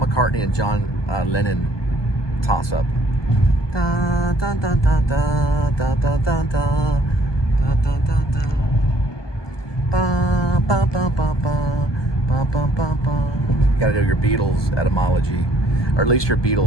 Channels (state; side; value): late; right; 1.2 ms